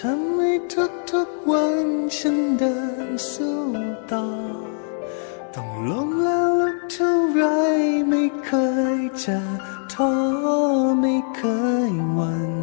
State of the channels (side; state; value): right; silent; digital silence